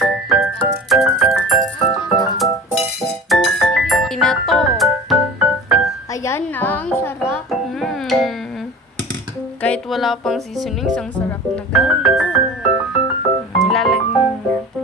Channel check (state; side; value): normal; both; correlation 0.37